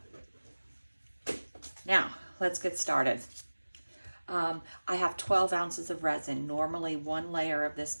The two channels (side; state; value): both; inverted; correlation -1.00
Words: Now, let's get started. I have 12 ounces of resin. Normally, one layer of